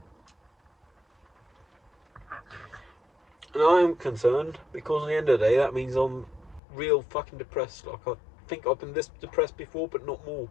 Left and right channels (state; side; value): drops out; right; at 6.6 s